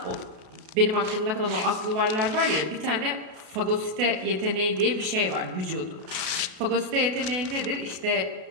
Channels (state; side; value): late; left; 33 ms